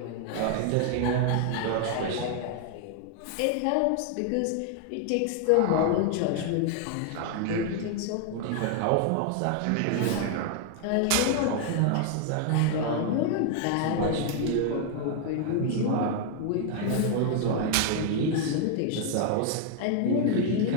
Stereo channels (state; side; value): different; both; correlation 0.00